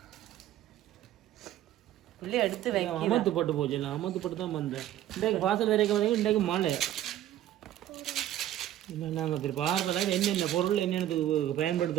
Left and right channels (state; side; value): quieter; left; 12.7 dB